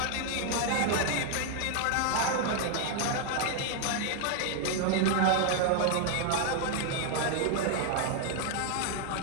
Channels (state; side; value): different; both; correlation 0.00